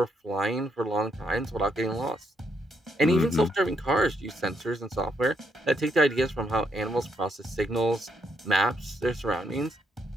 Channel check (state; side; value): normal; both; correlation 0.75